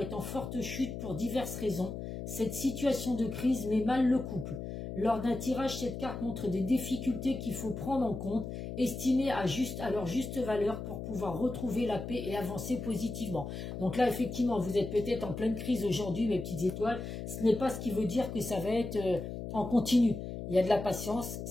en forte chute pour diverses raisons. Cette situation de crise met mal le couple. Lors d'un tirage, cette carte montre des difficultés qu'il faut prendre en compte, estimées à leur juste valeur pour pouvoir retrouver la paix et avancer positivement. Donc là, effectivement, vous êtes peut-être en pleine crise aujourd'hui, mes petites étoiles. Ce n'est pas ce qui veut dire que ça va être en continu. Il y a de la patience.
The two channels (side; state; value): left; noise; hum, 7 dB below the sound